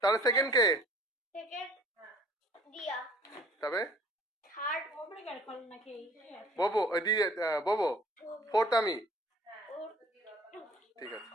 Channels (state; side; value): normal; both; correlation 0.53